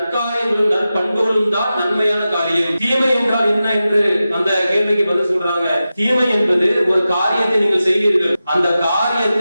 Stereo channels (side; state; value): both; inverted; correlation -0.93